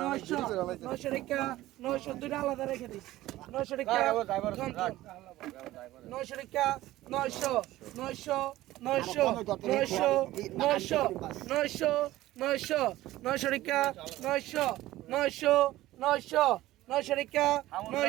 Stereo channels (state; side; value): quieter; left; 16.1 dB